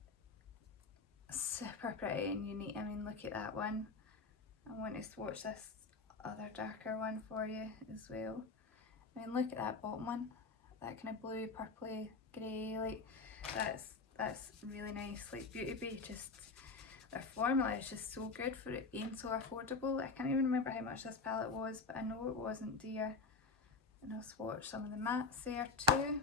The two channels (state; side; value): quieter; right; 4.1 dB